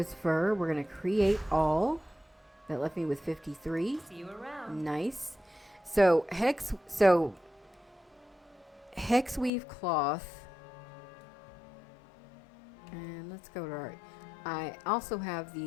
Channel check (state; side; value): drops out; right; at 9.5 s